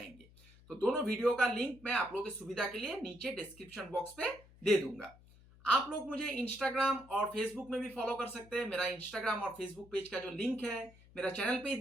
तो दोनों वीडियो का लिंक मैं आप लोगों की सुविधा के लिए नीचे डिस्क्रिप्शन बॉक्स पे दे दूंगा। आप लोग मुझे इंस्टाग्राम और फेसबुक में भी फॉलो कर सकते हैं। मेरा इंस्टाग्राम और फेसबुक पेज का जो लिंक है मेरा चैनल पे ही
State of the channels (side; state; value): left; noise; hum, 24 dB below the sound